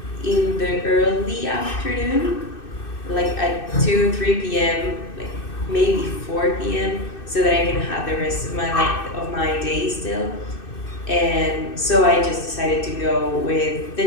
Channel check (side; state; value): right; late; 2.6 ms